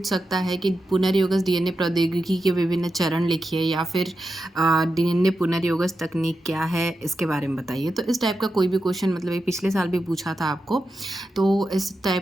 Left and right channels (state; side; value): normal; both; correlation 0.89